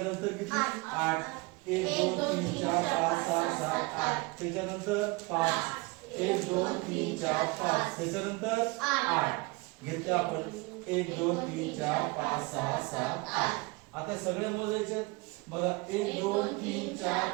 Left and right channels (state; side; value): quieter; left; 25.4 dB